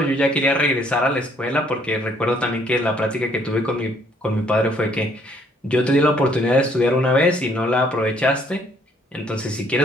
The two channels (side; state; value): both; normal; correlation 0.65